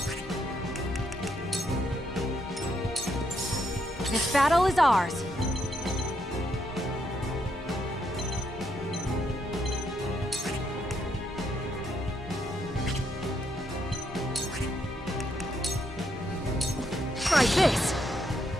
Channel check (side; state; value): both; normal; correlation 0.77